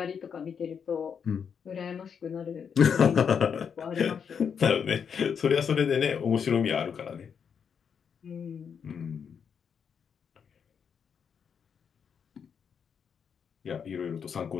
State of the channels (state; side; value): quieter; right; 7.0 dB